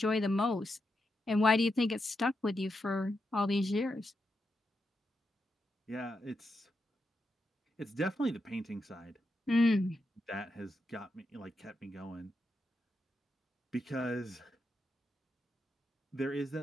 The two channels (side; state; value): both; normal; correlation 0.85